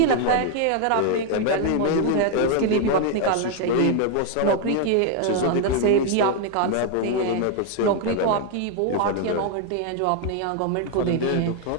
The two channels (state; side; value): different; both; correlation 0.00